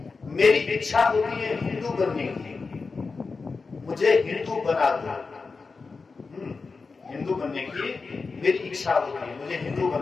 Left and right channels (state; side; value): quieter; right; 4.4 dB